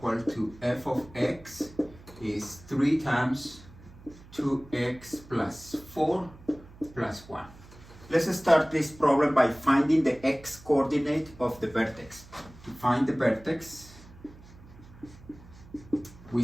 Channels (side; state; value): right; noise; hum, 21 dB below the sound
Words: to f of x is 3 times 2x plus 4 plus 1. Let's start this problem by finding the x coordinate of the vertex. To find the vertex, we